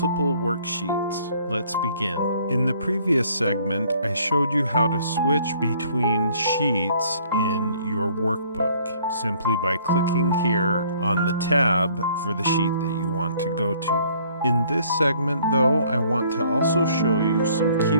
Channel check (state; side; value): inverted; both; correlation -0.59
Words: worksheets. Let's begin. In the previous segment, I showed you how to switch between sheets in your workbook simply by clicking here on the tab for the sheet that you want to go to. In this segment, though, I want to also show you some